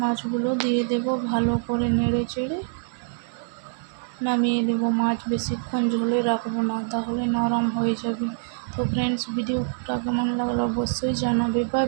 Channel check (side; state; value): left; silent; digital silence